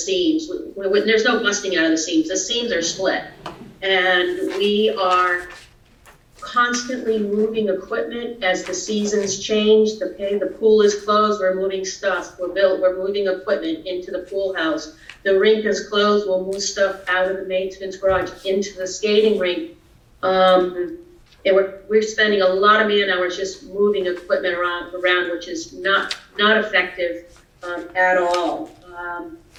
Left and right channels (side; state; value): both; identical; correlation 1.00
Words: There's no busting out of the seams are split. And we are constantly moving equipment as the seasons change. The pool is closed, we're moving stuff. We're moving equipment into the pool house. The rink is closed, we'll move stuff out of the maintenance garage into the skating rink. And we're spending a lot of man hours just moving equipment around, which is not effective at all.